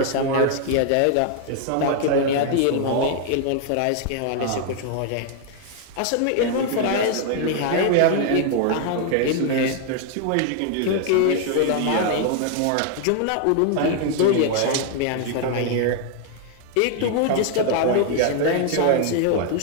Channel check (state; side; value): different; both; correlation 0.00